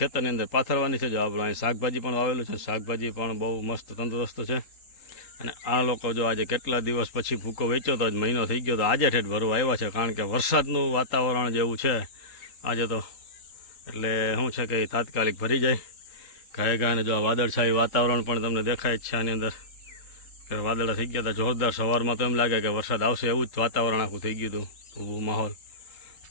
અંદર પાથરવાની છે. જો આપણું અહીં શાકભાજી પણ વાવેલું છે, શાકભાજી પણ બહુ મસ્ત તંદુરસ્ત છે. અને આ લોકો જો આજે કેટલા દિવસ પછી ભૂકો વેચ્યો તો, આજ મહિનો થઈ ગયો, તો આજે ઠેઠ ભરવા આવ્યા છે. કારણ કે વરસાદનું વાતાવરણ જેવું છે આજે તો, એટલે શું છે કે તાત્કાલિક ભરી જાય ગાય અને જો વાદળછાયું વાતાવરણ પણ તમને દેખાય જ છે આની અંદર કે વાદળા થઈ ગયા હતા જોરદાર. સવારમાં તો એમ લાગે કે વરસાદ આવશે એવું જ વાતાવરણ આખું થઈ ગયું હતું, ઊભું માહોલ.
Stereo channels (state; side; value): late; right; 3.8 ms